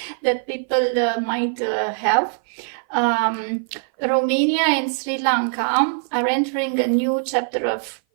that people might have, Romania and Sri Lanka are entering a new chapter of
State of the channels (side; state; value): left; silent; 56 dB below the other